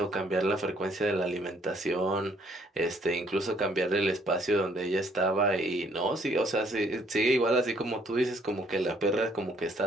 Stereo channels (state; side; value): normal; both; correlation 0.64